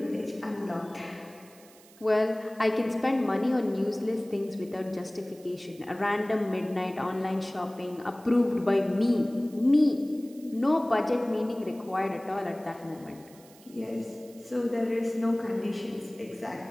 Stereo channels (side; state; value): right; noise; hiss, 24 dB below the sound